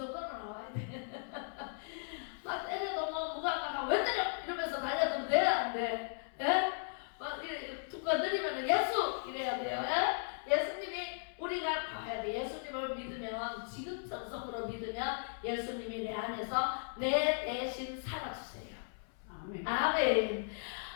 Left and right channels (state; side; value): silent; right; 53 dB below the other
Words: 나와야 돼. 막 때려도 뭐 무감각하고 왜 때려 이러면서 달려들면 돼? 안 돼? 예? 막 이래 툭 건드리면 예수 이래야 돼요. 예? 예수님이 우리가 가야 돼. 예수님을 믿으면 지금 전성으로 믿으면 예수님이 내 안에서 내 대신 살아주세요. 아멘. 아멘.